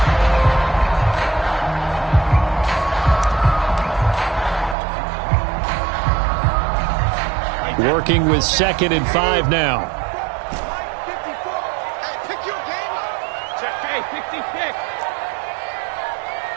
Working with 2nd and 5 now.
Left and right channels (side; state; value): left; drops out; at 4.8 s